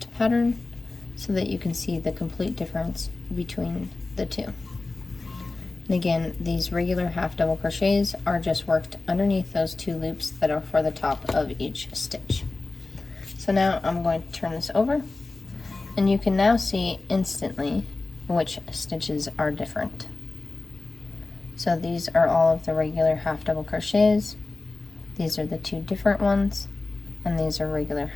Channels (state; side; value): quieter; right; 3.4 dB